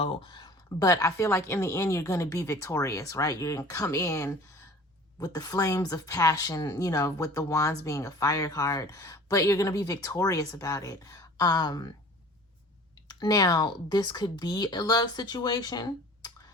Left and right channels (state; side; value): normal; both; correlation 0.45